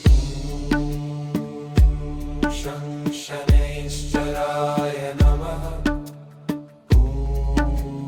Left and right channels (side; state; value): both; identical; correlation 1.00